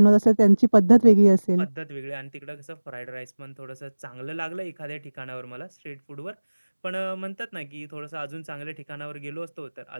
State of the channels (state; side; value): inverted; both; correlation -1.00